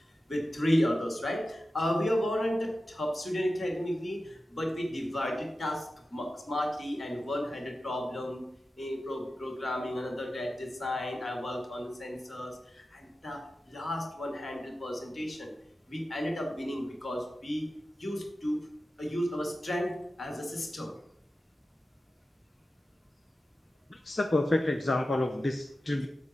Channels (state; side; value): normal; both; correlation 0.93